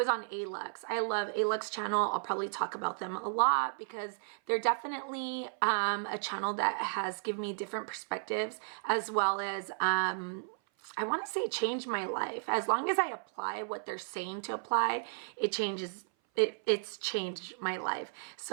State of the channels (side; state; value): left; silent; 55 dB below the other